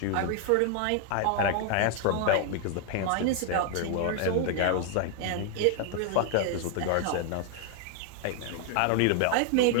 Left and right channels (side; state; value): both; different; correlation 0.00